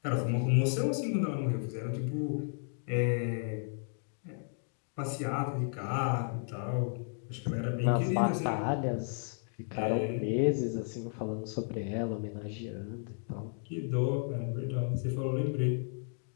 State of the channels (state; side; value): silent; right; 55 dB below the other